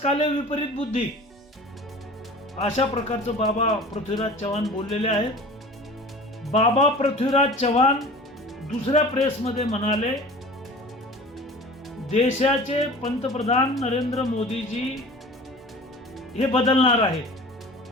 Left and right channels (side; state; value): both; normal; correlation 0.41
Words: विपरीत बुद्धी, अशा प्रकारचं बाबा पृथ्वीराज चव्हाण बोललेले आहेत. बाबा पृथ्वीराज चव्हाण दुसऱ्या प्रेसमध्ये म्हणाले, देशाचे पंतप्रधान नरेंद्र मोदीजी हे बदलणार आहेत.